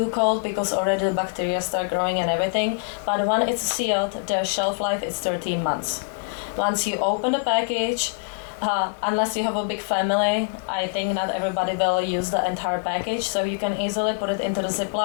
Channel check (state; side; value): quieter; right; 37.1 dB